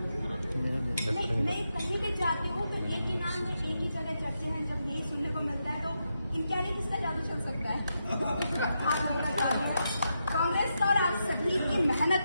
कहीं भी जाती हूँ तो एक ही नाम है, एक ही जगह चर्चे हैं। जब यही सुनने को मिलता है तो इनका नहीं किसका जादू चल सकता है? आप लोगों का जादू है, कांग्रेस का और आप सभी की मेहनत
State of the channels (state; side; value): inverted; both; correlation -0.85